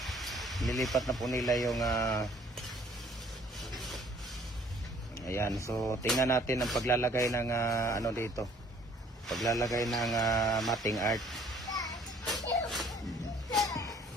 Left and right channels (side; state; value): both; normal; correlation 0.58